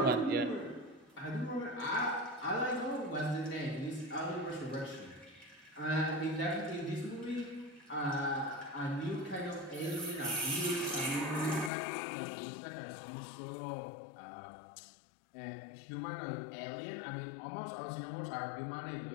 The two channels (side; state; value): right; drops out; at 11.7 s